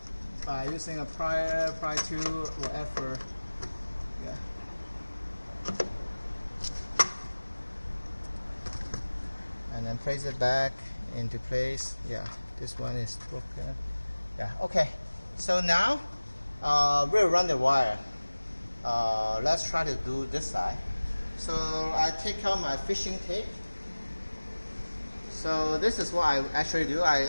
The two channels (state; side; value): inverted; both; correlation -1.00